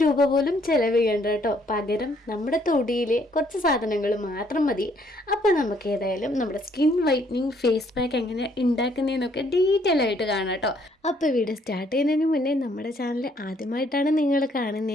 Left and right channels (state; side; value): normal; both; correlation 0.66